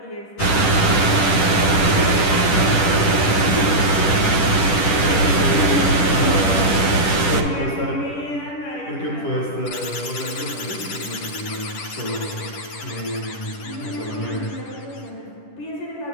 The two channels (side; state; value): right; late; 10 ms